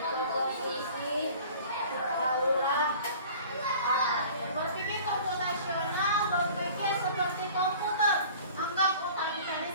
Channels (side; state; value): both; inverted; correlation -0.45